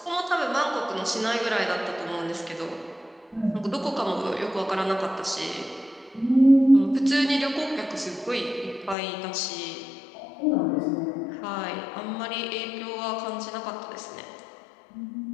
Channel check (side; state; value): right; drops out; at 9.0 s